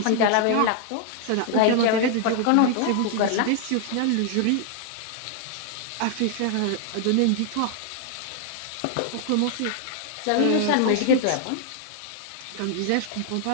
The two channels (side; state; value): both; different; correlation 0.00